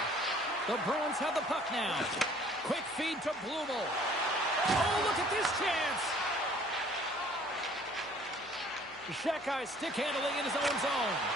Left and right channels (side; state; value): left; noise; hum, 30 dB below the sound